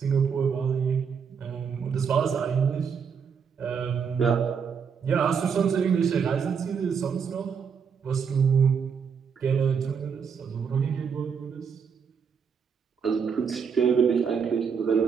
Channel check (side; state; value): left; quieter; 6.5 dB